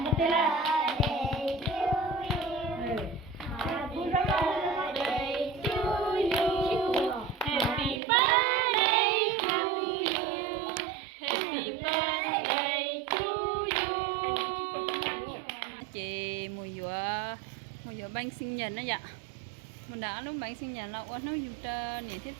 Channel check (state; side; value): drops out; left; at 8.0 s